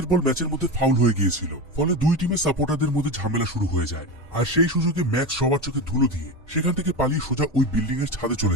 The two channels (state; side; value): normal; both; correlation 0.21